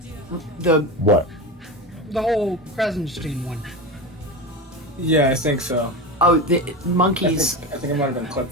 The What? The whole Krasenstein one. Yeah, I think so. the monkeys, I think it might have been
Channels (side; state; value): both; normal; correlation 0.23